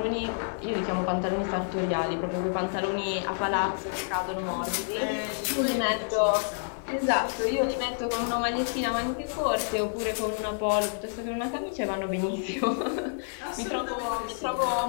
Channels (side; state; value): right; silent; digital silence